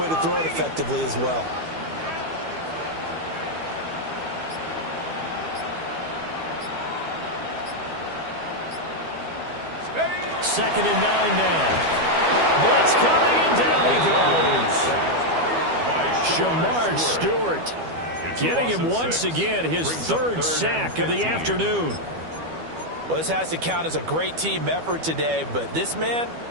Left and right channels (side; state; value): left; late; 12 ms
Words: to throw it effectively as well. Second and 9 now. Blitz coming, and down he goes. Jamar Stewart getting him once again his 3rd sack of the afternoon. Well, this has to count as a great team effort today, but this man,